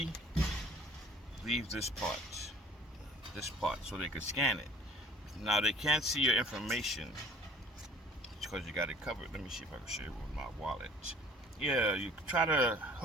leave this part, so they could scan it. Now, they can't see your information because you got it covered. Let me see if I can show you with my wallet. Yeah, you try to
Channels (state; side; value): normal; both; correlation 0.52